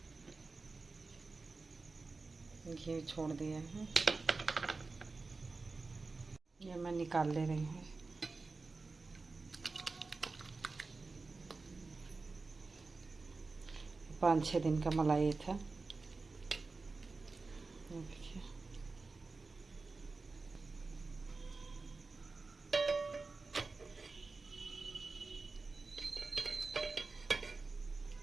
घी छोड़ दिया है, ये मैं निकाल ले रही हूँ। पाँच 6 दिन का मलाई था। देखिए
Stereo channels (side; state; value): left; quieter; 3.9 dB